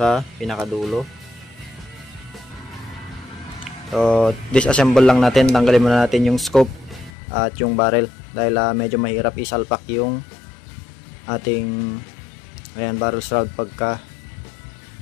pinakadulo. So disassemble lang natin, tanggalin muna natin yung scope at yung barrel dahil medyo mahirap isalpak yung ating barrel shroud pagka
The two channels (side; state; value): right; drops out; at 7.1 s